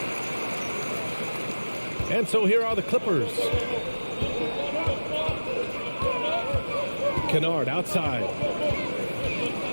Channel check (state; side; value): inverted; both; correlation -1.00